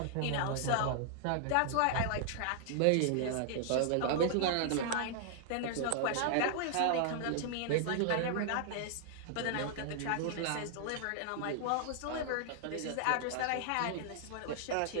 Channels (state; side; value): different; both; correlation -0.01